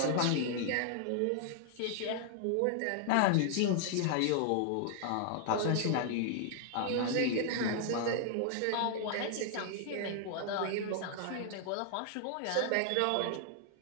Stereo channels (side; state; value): both; different; correlation 0.00